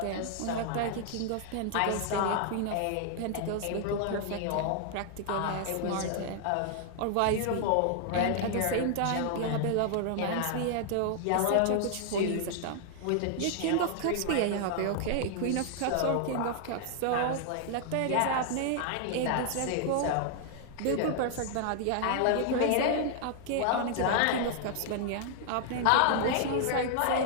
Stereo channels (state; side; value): different; both; correlation 0.00